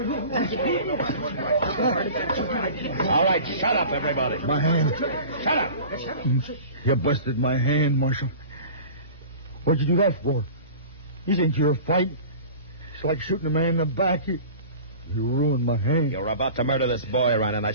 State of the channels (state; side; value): inverted; both; correlation -0.40